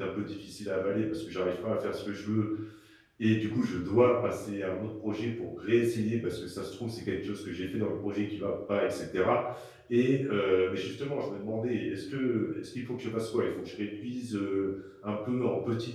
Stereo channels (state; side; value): identical; both; correlation 1.00